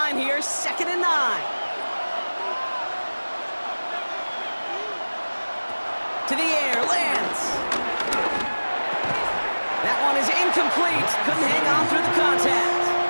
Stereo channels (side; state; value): both; inverted; correlation -1.00